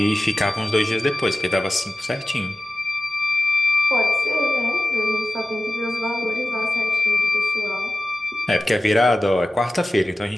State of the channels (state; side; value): normal; both; correlation 0.94